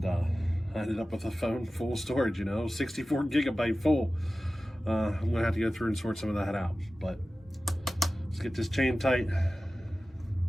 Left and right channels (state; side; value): normal; both; correlation 0.96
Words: I ended up with a phone full of storage, 64 gigabyte full. I'm gonna have to go through and sort some of that out. But let's get this chain tight,